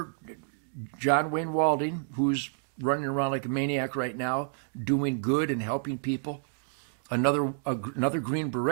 John Wayne Walding, who's running around like a maniac right now, doing good and helping people. Another Green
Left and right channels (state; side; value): silent; left; digital silence